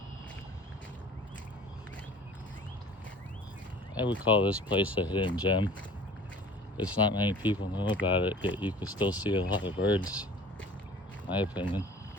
I would call this place a hidden gem. It's not many people know about it, yet you can still see a lot of birds, in my opinion.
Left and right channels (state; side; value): normal; both; correlation 0.46